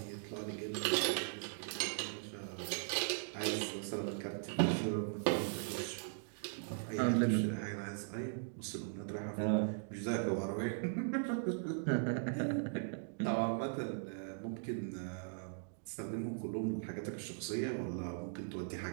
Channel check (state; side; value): silent; left; digital silence